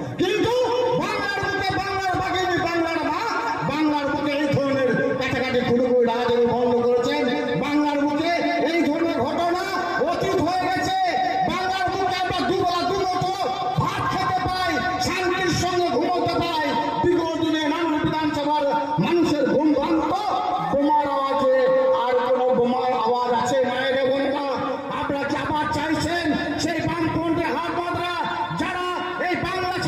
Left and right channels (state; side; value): identical; both; correlation 1.00